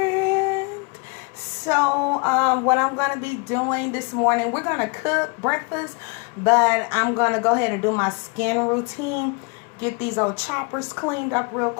So, what I'm going to be doing this morning, we're going to cook breakfast, but I'm going to go ahead and do my skin routine, get these old choppers cleaned up real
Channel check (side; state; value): right; quieter; 33.0 dB